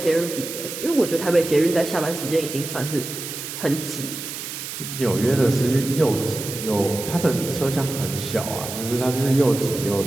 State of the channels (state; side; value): noise; right; hiss, 8 dB below the sound